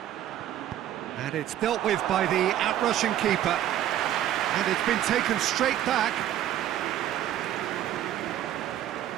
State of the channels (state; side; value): quieter; left; 11.9 dB